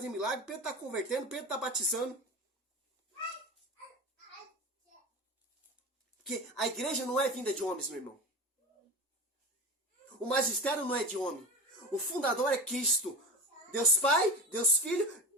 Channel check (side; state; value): both; normal; correlation 0.27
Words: milagre, Pedro está convertendo, Pedro está batizando. Porque a igreja não é vinda de homens, meu irmão. O magistério não é de homem. O fundador é Cristo. Deus Pai, Deus Filho,